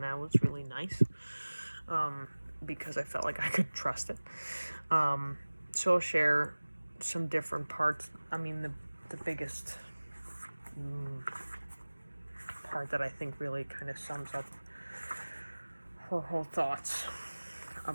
that was really nice, because I felt like I could trust it. So I'll share some different parts. I mean, the biggest part that I think really kind of sums up her whole thoughts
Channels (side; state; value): both; inverted; correlation -1.00